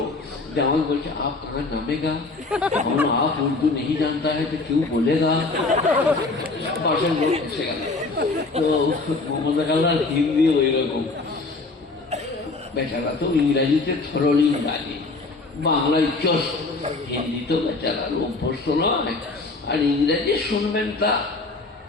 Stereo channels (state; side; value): quieter; right; 3.5 dB